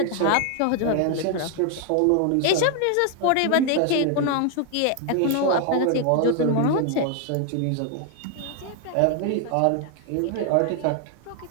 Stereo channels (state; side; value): different; both; correlation 0.00